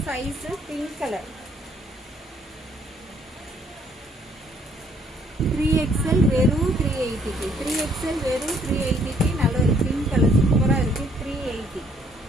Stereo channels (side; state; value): both; normal; correlation 0.65